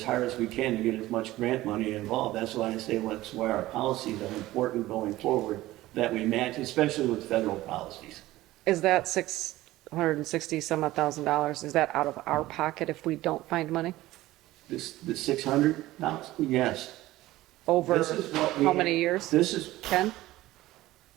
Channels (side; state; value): left; quieter; 16.8 dB